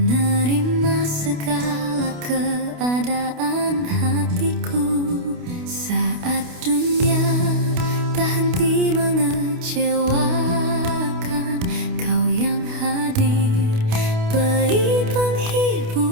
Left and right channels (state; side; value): late; left; 28 ms